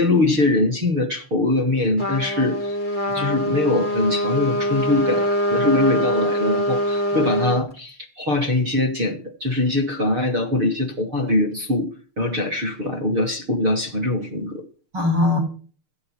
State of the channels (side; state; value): left; late; 6.6 ms